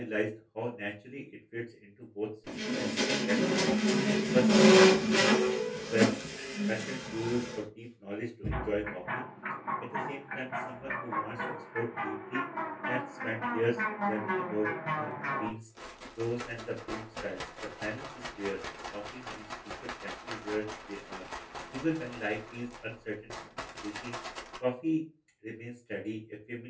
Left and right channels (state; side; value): identical; both; correlation 1.00